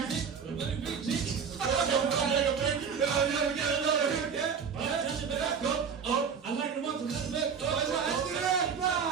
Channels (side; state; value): left; quieter; 6.5 dB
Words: kick, let it be, kick. I like the ones who let the back